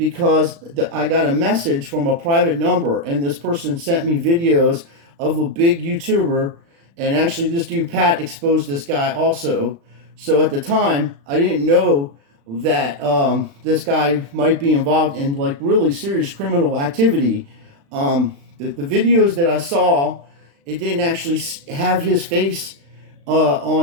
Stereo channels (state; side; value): late; left; 36 ms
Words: I got a message from a private number, and this person sent me videos of a big YouTuber, and actually this dude Pat exposed this guy also. So at the time, I didn't know that this guy might be involved in like really serious criminal activity. The videos that I saw, it didn't actually have his face